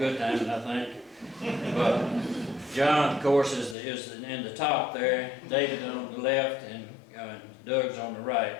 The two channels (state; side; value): drops out; right; at 3.8 s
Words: timing, I think. But John, of course, is in the top there. David on the left, and Doug's on the right.